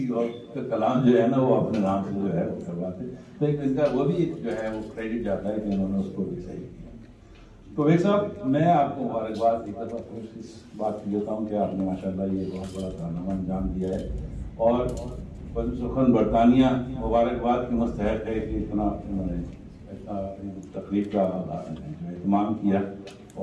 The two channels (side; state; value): both; identical; correlation 1.00